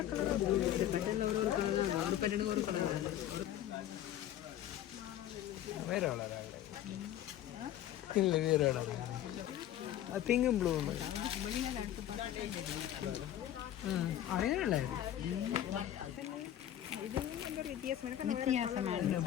வேற வளர இல்லை வேற வளர பிங்கும் ப்ளூ அதே நல்லா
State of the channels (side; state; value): right; quieter; 11.9 dB